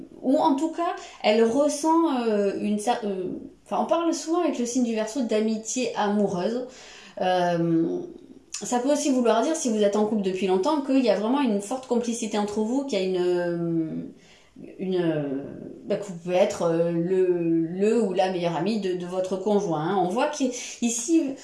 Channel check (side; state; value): both; identical; correlation 1.00